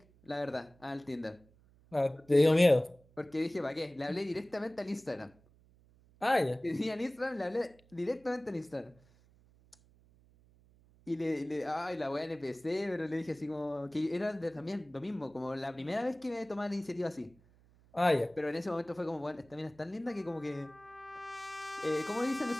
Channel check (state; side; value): noise; right; hum, 29 dB below the sound